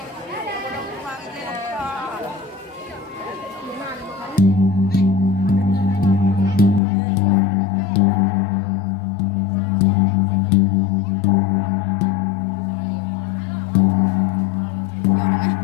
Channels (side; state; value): right; drops out; at 6.8 s